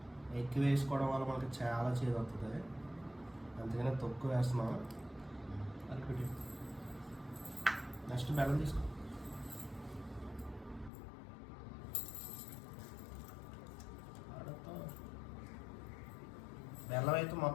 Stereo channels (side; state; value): right; drops out; at 10.9 s